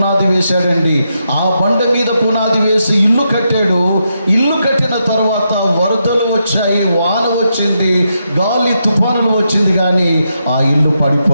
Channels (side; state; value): both; inverted; correlation -0.83